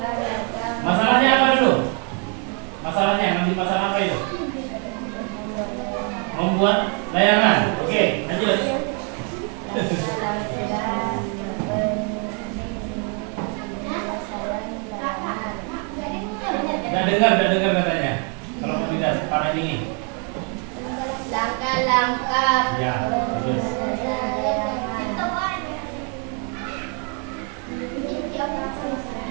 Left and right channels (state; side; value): quieter; left; 38.2 dB